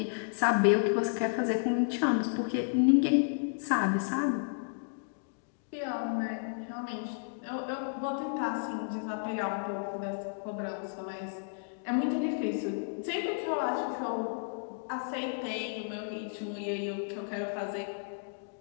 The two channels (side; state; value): right; silent; digital silence